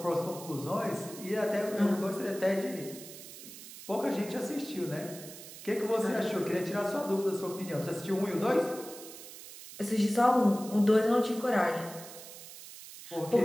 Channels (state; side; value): noise; right; hiss, 14 dB below the sound